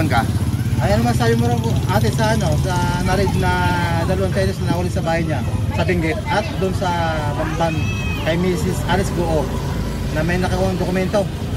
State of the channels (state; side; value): identical; both; correlation 1.00